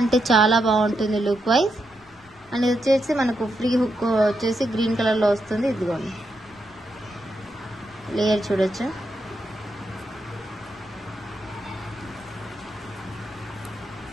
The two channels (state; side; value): noise; left; rumble, 29 dB below the sound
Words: చాలా బాగుంటుంది లుక్ వైజ్. అండ్ ఇది వచ్చేసి మనకు ఫ్రీ హుక్ వచ్చేసి గ్రీన్ కలర్లో వస్తుంది. ఇదిగోండి లేయర్ చూడొచ్చు.